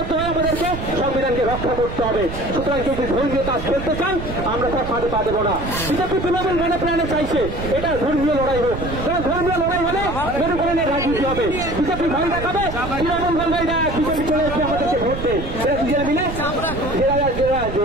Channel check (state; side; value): noise; right; rumble, 7 dB below the sound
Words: আমাদেরকে সংবিধানকে রক্ষা করতে হবে। সুতরাং কেউ যদি ধর্মীয় কাজ করতে চান, আমরা তার ফাঁদে পা দেবো না। বিজেপি তৃণমূল মনে প্রাণে চাইছে এটা ধর্মীয় লড়াই হোক, কারণ ধর্মীয় লড়াই হলে মেরুকরণের রাজনীতি হবে। বিজেপি ভয় দেখাবে, তৃণমূল বলবে বিজেপি চলে এসে আমাদেরকে ভোট দেয়। এরা দুজনে মিলে